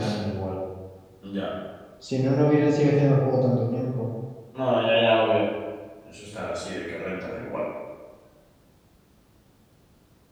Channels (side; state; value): both; identical; correlation 1.00